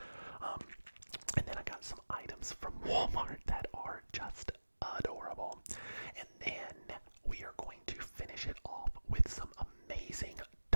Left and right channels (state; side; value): inverted; both; correlation -1.00